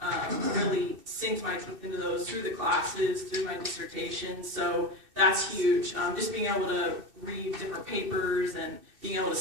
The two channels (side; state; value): left; late; 2.6 ms